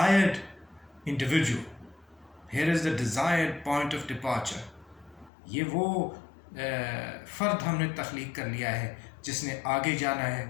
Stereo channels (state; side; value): drops out; right; at 5.3 s